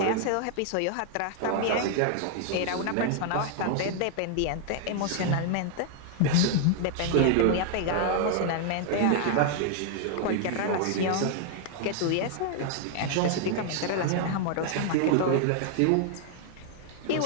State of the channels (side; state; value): both; different; correlation 0.00